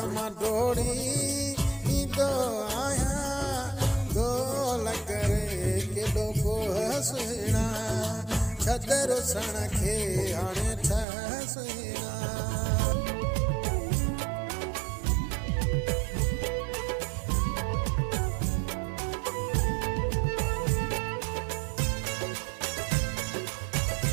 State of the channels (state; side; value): drops out; left; at 11.1 s